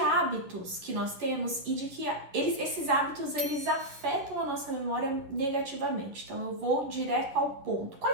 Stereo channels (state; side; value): late; left; 11 ms